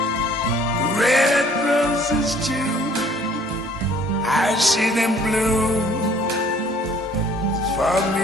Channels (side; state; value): both; normal; correlation 0.56